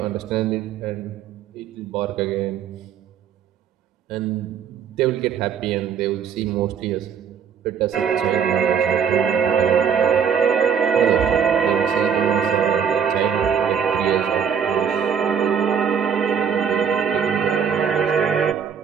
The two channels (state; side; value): quieter; left; 7.3 dB